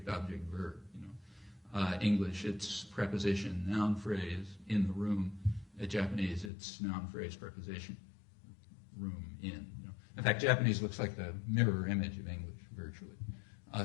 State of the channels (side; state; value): right; drops out; at 6.5 s